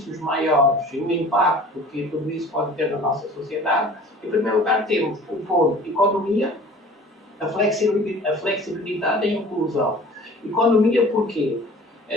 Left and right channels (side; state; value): both; normal; correlation 0.45